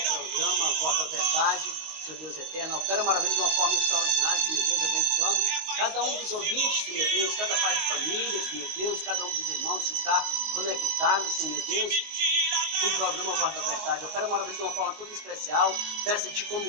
programa Voz da Verdade. Senhor Deus eterno, opera maravilha de uma forma extraordinária, Senhor Deus, abençoando cada um dos ouvintes, Senhor Deus, cada pai de família, Senhor Deus, cada um dos irmãos que está conectado, Senhor Deus, com o programa Voz da Verdade. Opera maravilha de uma forma toda especial. Peço-te, como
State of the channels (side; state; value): left; late; 19 ms